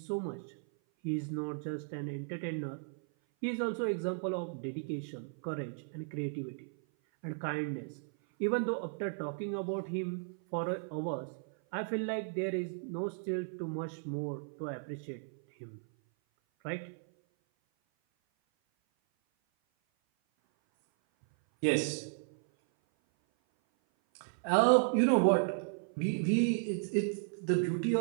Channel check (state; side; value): silent; left; 54 dB below the other